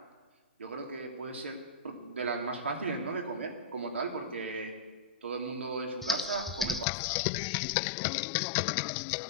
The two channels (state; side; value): drops out; right; at 6.9 s